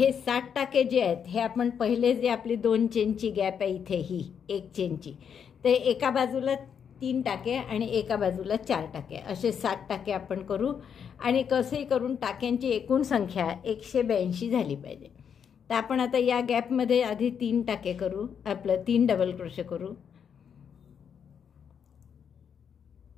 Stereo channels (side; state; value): right; quieter; 7.5 dB